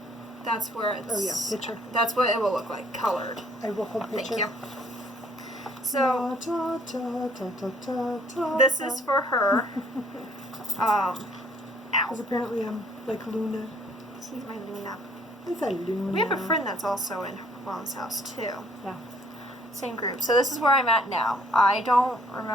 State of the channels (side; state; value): both; normal; correlation 0.61